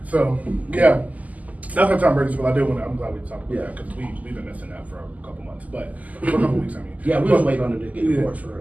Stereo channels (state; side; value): late; left; 0.076 ms